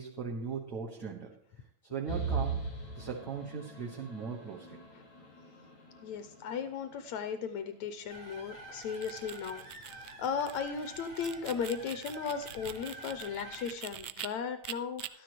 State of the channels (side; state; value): right; late; 9.0 ms